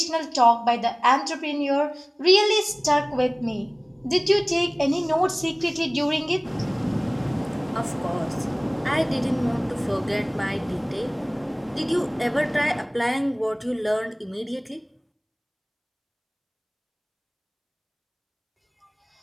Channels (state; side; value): identical; both; correlation 1.00